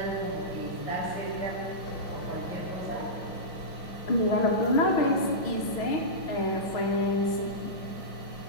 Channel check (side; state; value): right; late; 5.6 ms